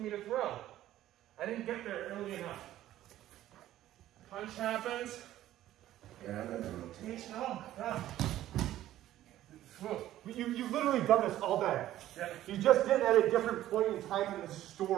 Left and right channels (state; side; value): quieter; left; 13.6 dB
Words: me to throw. I didn't get there early enough. Punch happens. Yeah, and then the rotation. Oh my God. You've literally done this all day. Yeah. You just did it at a different point in time in the